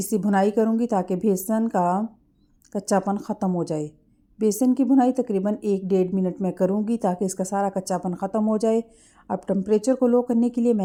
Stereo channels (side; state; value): both; identical; correlation 1.00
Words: सी भुनाई करूँगी ताकि बेसन का कच्चापन ख़त्म हो जाए। बेसन की भुनाई तकरीबन 1-1.5 मिनट में करूँगी ताकि इसका सारा कच्चापन ख़त्म हो जाए। अब टेम्परेचर को लो करने के लिए